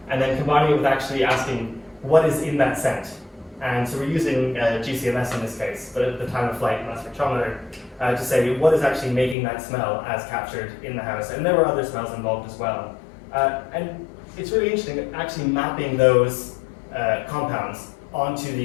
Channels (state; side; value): drops out; right; at 9.3 s